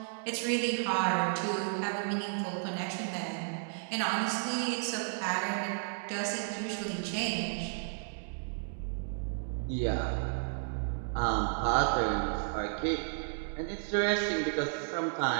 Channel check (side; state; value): left; silent; digital silence